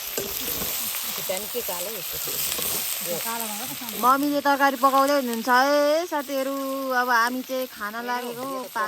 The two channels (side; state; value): both; identical; correlation 1.00